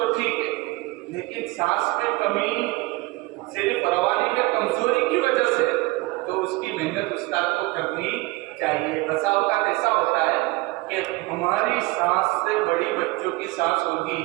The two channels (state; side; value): quieter; left; 22.3 dB